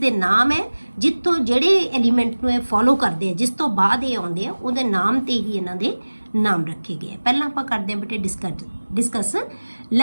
ਨਾਮ ਹੈ ਜਿੱਥੋਂ ਜਿਹੜੇ ਐਲੀਮੈਂਟ ਨੂੰ ਇਹ ਫੋਲੋ ਕਰਦੇ ਆ, ਜਿਸ ਤੋਂ ਬਾਅਦ ਇਹ ਆਉਂਦੇ ਆ, ਉਹਦੇ ਨਾਮ ਤੇ ਹੀ ਇਹਨਾਂ ਦੇ ਨਾਮ ਰੱਖੇ ਗਏ। ਪਹਿਲਾਂ ਆਪਾਂ ਕਰਦੇ ਹਾਂ ਬੇਟੇ discuss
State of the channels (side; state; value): both; inverted; correlation -1.00